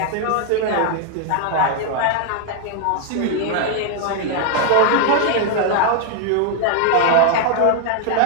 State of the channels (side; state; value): both; different; correlation 0.00